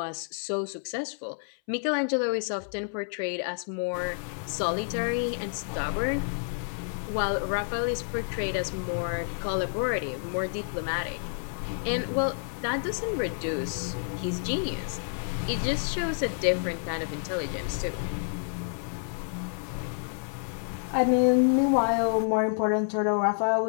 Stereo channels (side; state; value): right; silent; 59 dB below the other